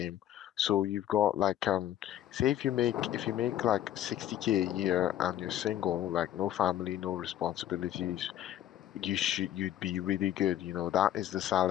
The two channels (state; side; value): quieter; right; 11.7 dB